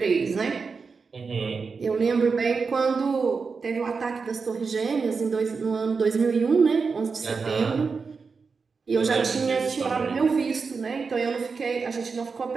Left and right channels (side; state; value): left; quieter; 5.0 dB